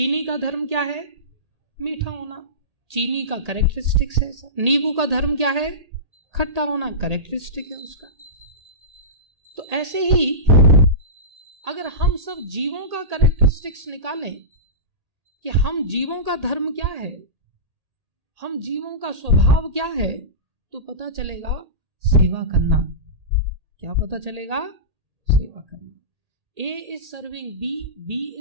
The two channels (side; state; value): left; late; 1.8 ms